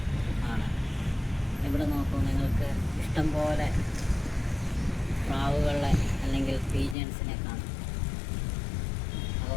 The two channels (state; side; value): drops out; right; at 7.0 s